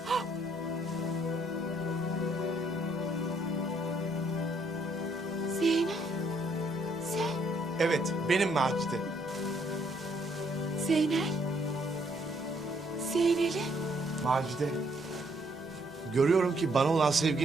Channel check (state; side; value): normal; both; correlation 0.69